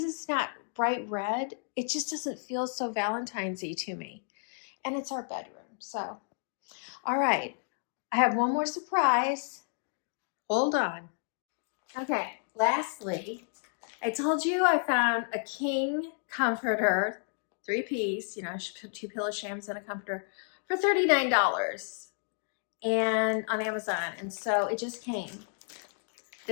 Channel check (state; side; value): silent; right; 57 dB below the other